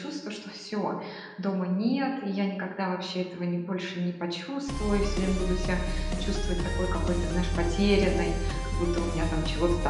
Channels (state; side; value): identical; both; correlation 1.00